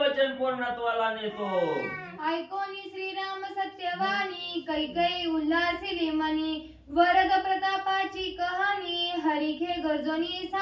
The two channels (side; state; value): both; identical; correlation 1.00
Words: पूर्णत्वाला नेतो. ऐकोनी श्रीराम सत्यवाणी कैकेयी उल्हासिली मनी वरद प्रतापाची कहाणी हरिखे गरजोनी